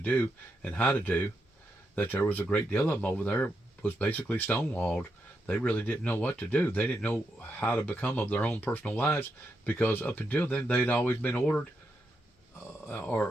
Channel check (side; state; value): both; normal; correlation 0.83